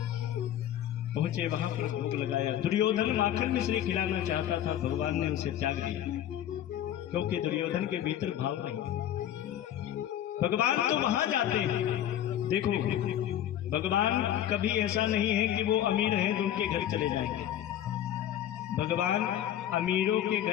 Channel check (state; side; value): quieter; right; 11.3 dB